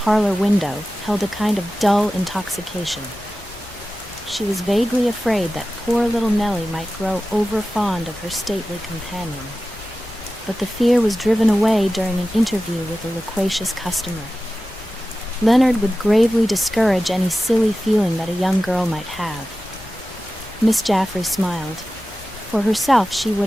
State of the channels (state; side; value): normal; both; correlation 0.94